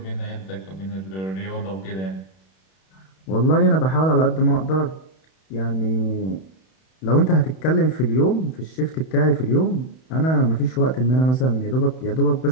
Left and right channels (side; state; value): right; late; 31 ms